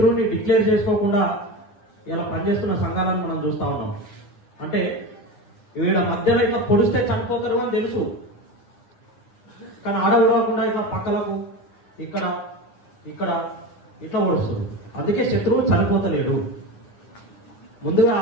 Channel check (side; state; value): right; late; 9.7 ms